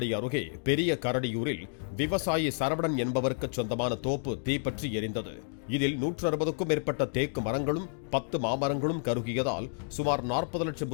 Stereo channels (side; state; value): right; silent; digital silence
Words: அருகே பெரிய கரடியூரில் விவசாயி சரவணன் என்பவருக்கு சொந்தமான தோப்பு தீப்பற்றி எரிந்தது. இதில் 160க்கும் மேற்பட்ட தேக்கு மரங்களும் 10 மாமரங்களும் கருகியதால் சுமார் 40 லட்சம்